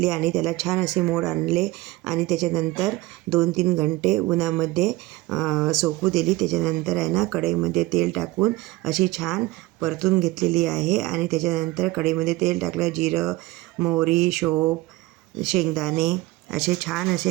आणि त्याला छान असे मोड आणले आणि त्याच्यानंतर 2-3 घंटे उन्हामध्ये सोकू दिली। त्याच्यानंतर आहे ना कढईमध्ये तेल टाकून अशी छान परतून घेतलेली आहे आणि त्याच्यानंतर कढईमध्ये तेल टाकलं, जिरं, मोहरी, शोप, शेंगदाणे असे छान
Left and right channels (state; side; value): quieter; left; 19.4 dB